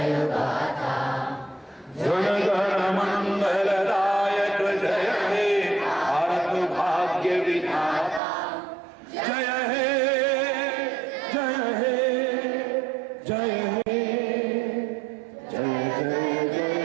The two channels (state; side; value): drops out; left; at 8.2 s